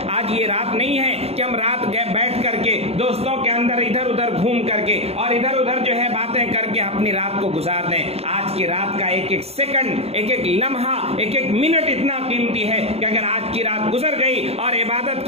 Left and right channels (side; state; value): left; late; 0.29 ms